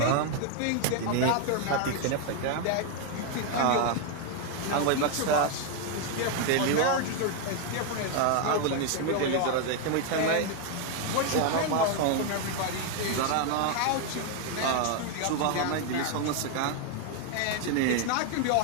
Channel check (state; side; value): different; both; correlation 0.01